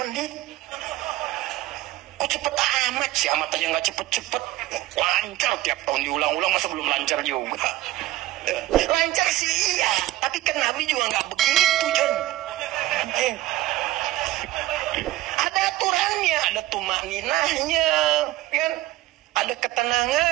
Kok cepet amat sih? Amat aja nggak cepet-cepet. Lancar tiap tahun diulang-ulang, masa belum lancar juga? Lancar sih iya, tapi kan Nabi juga nggak begitu, John. Ada aturannya, ada tumaninahnya, kan? Ada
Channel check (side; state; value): left; quieter; 16.4 dB